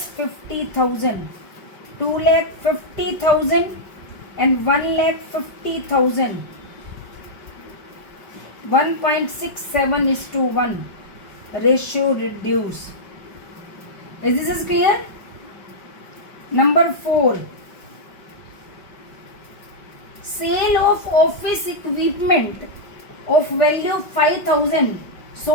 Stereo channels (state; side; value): late; right; 5.3 ms